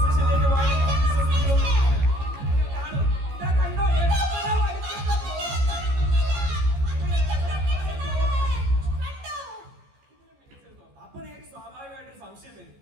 പോകാം. അപ്പൊ നിങ്ങൾക്ക് സ്വാഭാവികമായിട്ടൊരു സംശയം വരും,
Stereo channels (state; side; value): late; left; 14 ms